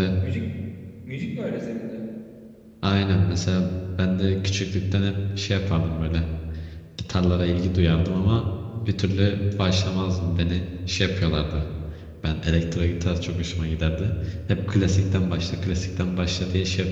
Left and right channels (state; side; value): identical; both; correlation 1.00